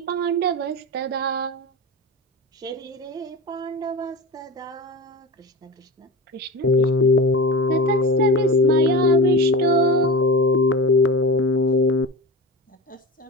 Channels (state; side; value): normal; both; correlation 0.29